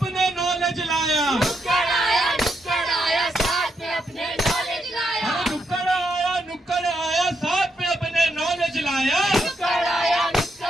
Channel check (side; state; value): both; normal; correlation 0.80